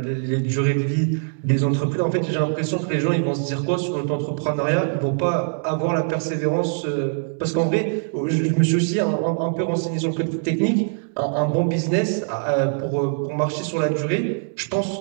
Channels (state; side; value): silent; left; digital silence